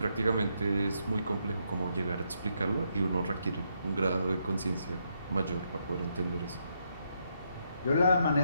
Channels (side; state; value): both; inverted; correlation -0.78